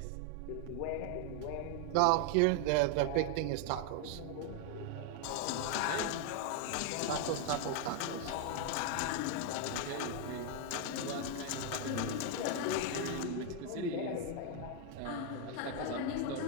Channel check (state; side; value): different; both; correlation 0.01